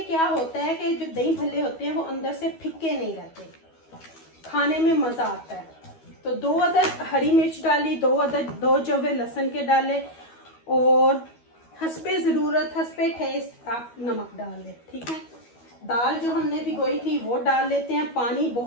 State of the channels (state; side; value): late; right; 12 ms